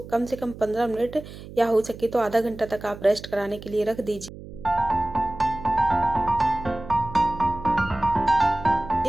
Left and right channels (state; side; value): noise; right; hum, 15 dB below the sound